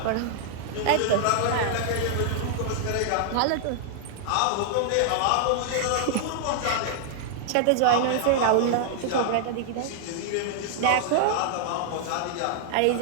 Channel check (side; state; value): both; different; correlation -0.01